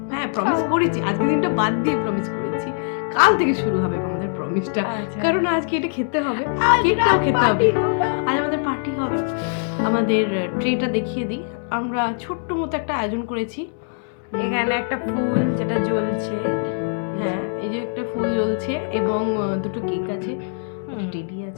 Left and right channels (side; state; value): right; silent; 62 dB below the other